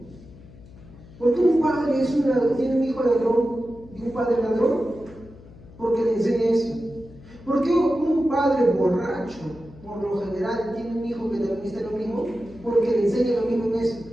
¿Por qué un padre tiene un hijo ladrón y un padre ladrón? Porque le enseña eso. ¿Por qué un padre borracho, por lo general, tiene un hijo que también está en lo mismo? Porque le enseña lo mismo en eso.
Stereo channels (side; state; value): left; noise; hum, 21 dB below the sound